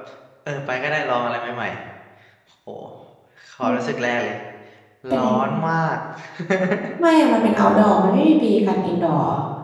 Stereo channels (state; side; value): identical; both; correlation 1.00